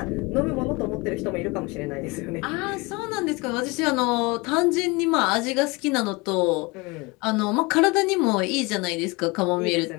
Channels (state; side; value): quieter; right; 25.8 dB